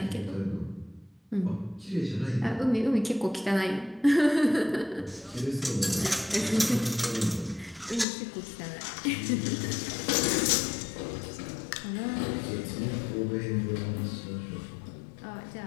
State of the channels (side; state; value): right; drops out; at 8.1 s